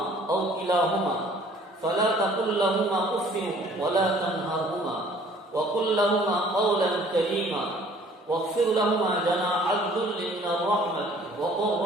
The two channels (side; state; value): both; normal; correlation 0.55